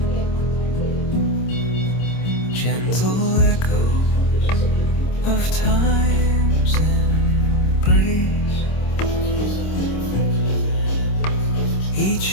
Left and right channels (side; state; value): right; late; 26 ms